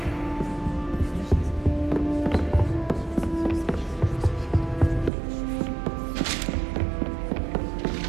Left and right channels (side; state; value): left; drops out; at 5.1 s